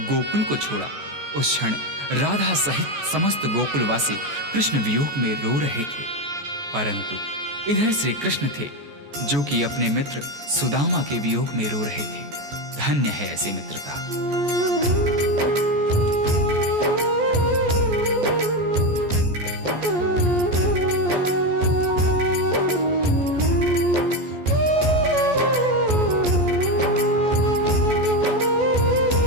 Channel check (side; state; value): left; late; 14 ms